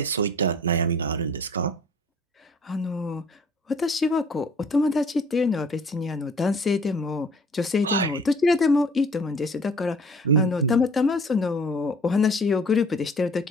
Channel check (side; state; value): both; normal; correlation 0.51